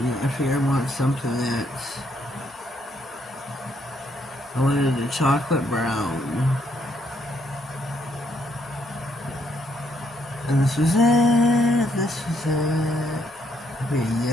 I figured I want something that's, I wanted a chocolate brown. And this was it. Okay,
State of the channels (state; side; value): normal; both; correlation 0.73